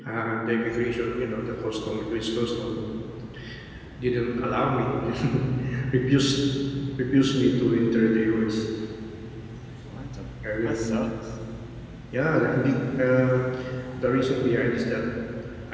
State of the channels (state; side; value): identical; both; correlation 1.00